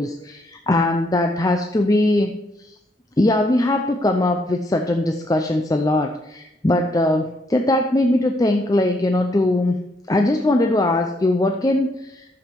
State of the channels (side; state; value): both; normal; correlation 0.72